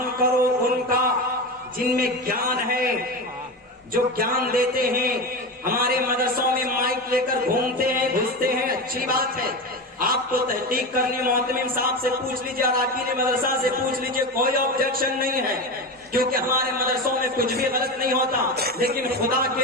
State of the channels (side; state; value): both; normal; correlation 0.22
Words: کرو ان کا جن میں جان ہے, جو جان دیتے ہیں. ہمارے مدرسوں میں مائک لے کر گھومتے ہیں, گھستے ہیں, اچھی بات ہے. آپ کو تحقیق کرنی معتمم صاحب سے پوچھ لیجیے, اراکین مدرسہ سے پوچھ لیجیے, کوئی آبجیکشن نہیں ہے, کیونکہ ہمارے مدرسوں میں کچھ بھی غلط نہیں ہوتا. لیکن خدا